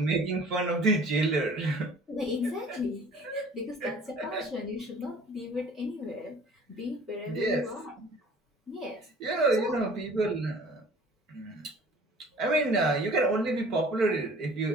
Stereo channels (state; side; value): normal; both; correlation 0.50